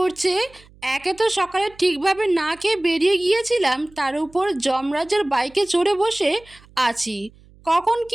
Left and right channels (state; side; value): noise; right; hum, 26 dB below the sound